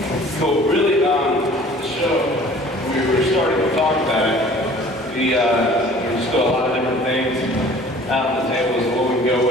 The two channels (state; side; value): normal; both; correlation 0.49